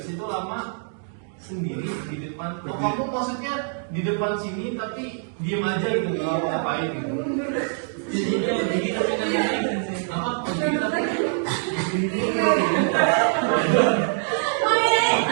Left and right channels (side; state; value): left; silent; digital silence